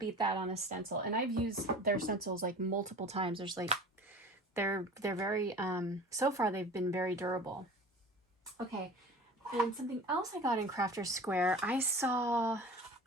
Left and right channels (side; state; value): both; normal; correlation 0.40